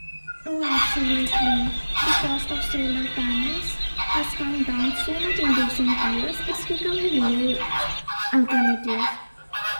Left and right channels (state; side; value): inverted; both; correlation -1.00